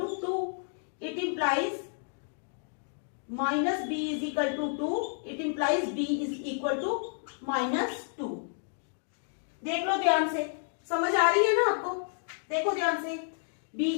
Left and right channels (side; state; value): right; silent; digital silence